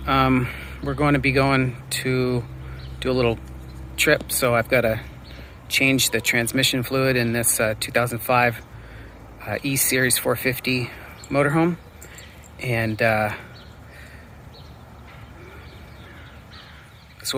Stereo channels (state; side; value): identical; both; correlation 1.00